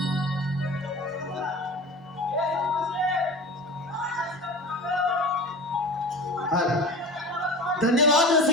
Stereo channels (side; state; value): both; normal; correlation 0.35